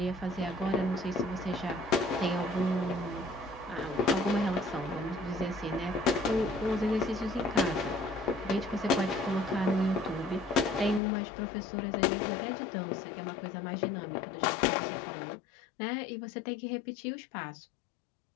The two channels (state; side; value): drops out; right; at 11.0 s